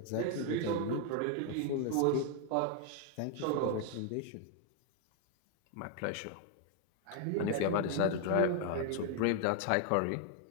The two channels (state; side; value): different; both; correlation 0.00